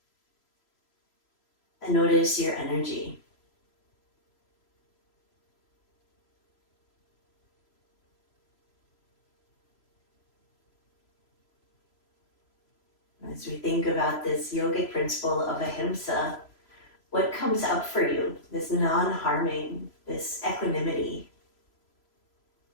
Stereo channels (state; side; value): late; right; 3.0 ms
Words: and notice your energy. As we think about this yogic principle of Ahimsa, what comes up for you? This non-harming, this equanimity,